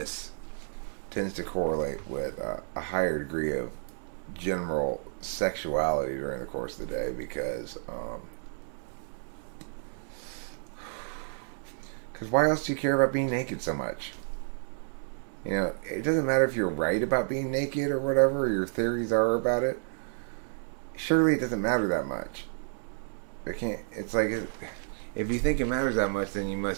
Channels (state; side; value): silent; left; digital silence